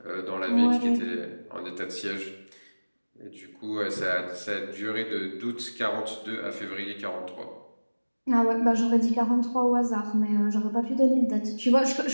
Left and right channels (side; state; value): both; inverted; correlation -1.00